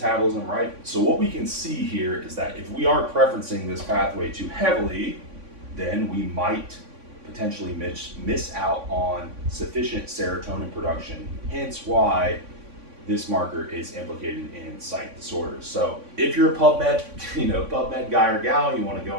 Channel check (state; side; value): late; left; 3.5 ms